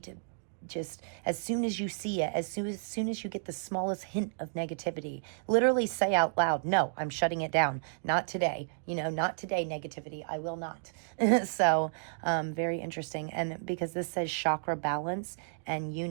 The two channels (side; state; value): left; silent; digital silence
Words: to just, as soon as you see it, as soon as you get the smallest hint of negativity, literally say out loud, no, I'm shutting it down. Not today. You know, not today, negativity. I will not. So very interesting. And because this says chakra balance and